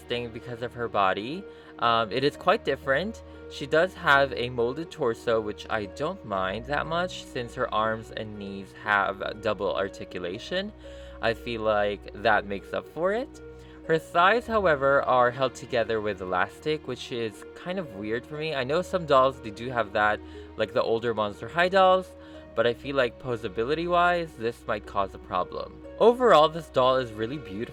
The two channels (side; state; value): both; identical; correlation 1.00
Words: because of her body. It is quite different. She does have a molded torso, which I don't mind that much since her arms and knees have double articulation. I feel like that makes up for it. Her thighs, however, are held together with elastic, which is kind of weird for me. I know some dolls, they do have that, like the older Monster High dolls, but I feel like posability-wise, this might cause a problem. Overall, this doll is really